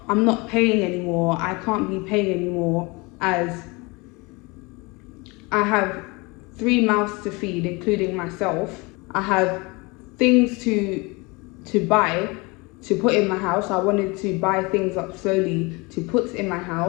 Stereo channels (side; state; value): right; quieter; 26.3 dB